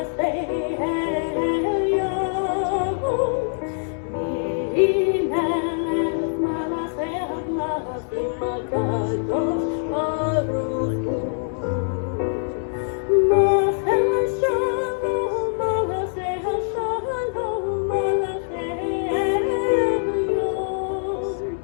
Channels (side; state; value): right; silent; digital silence